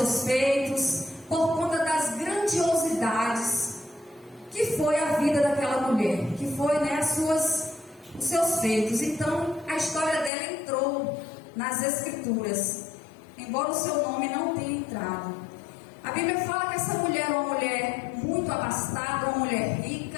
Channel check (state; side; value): drops out; right; at 10.3 s